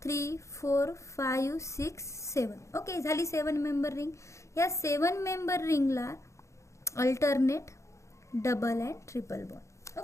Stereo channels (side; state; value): right; late; 0.14 ms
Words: 3 4 5 6 7. ओके, झाली 7 मेंबर रिंग. या 7 मेंबर रिंगला alternate double and triple bond.